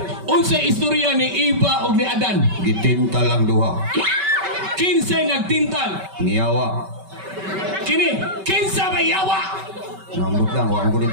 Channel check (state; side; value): late; left; 5.2 ms